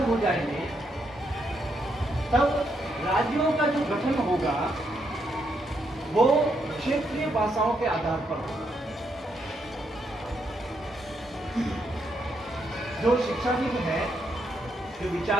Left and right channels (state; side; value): normal; both; correlation 0.78